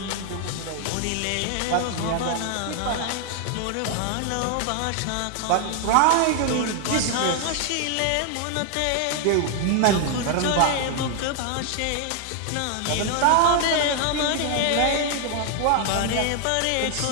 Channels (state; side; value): different; both; correlation 0.00